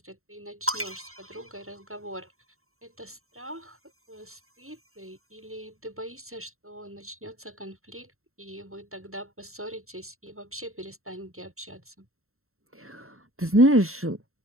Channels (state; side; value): late; left; 0.62 ms